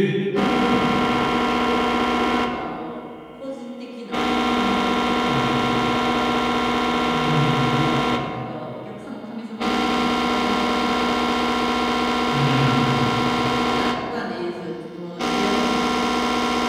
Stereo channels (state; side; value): identical; both; correlation 1.00